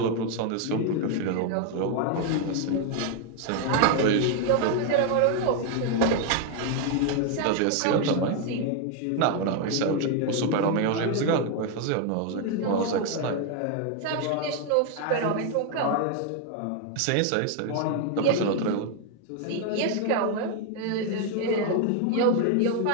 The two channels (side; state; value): both; different; correlation 0.01